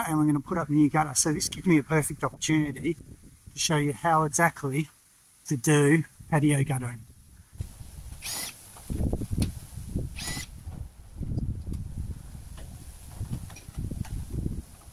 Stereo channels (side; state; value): both; identical; correlation 1.00